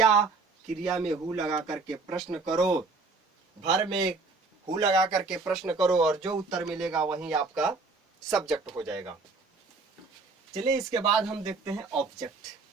क्रिया में हु लगा करके प्रश्न करो, भर में हु लगा करके प्रश्न करो और जो उत्तर मिलेगा वही आपका सब्जेक्ट हो जाएगा। चलिए इसके बाद हम देखते हैं ऑब्जेक्ट।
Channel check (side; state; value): left; quieter; 3.9 dB